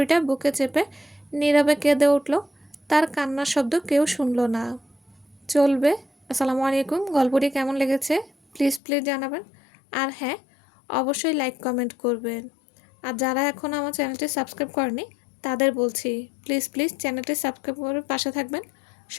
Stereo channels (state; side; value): drops out; right; at 8.8 s